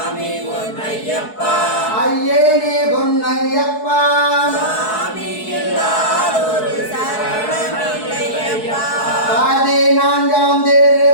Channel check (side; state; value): right; late; 4.7 ms